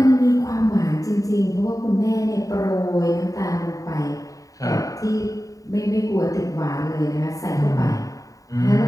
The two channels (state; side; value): late; right; 0.16 ms